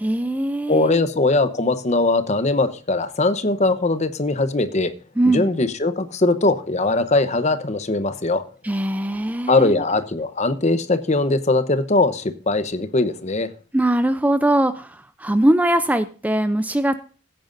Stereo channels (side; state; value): both; normal; correlation 0.46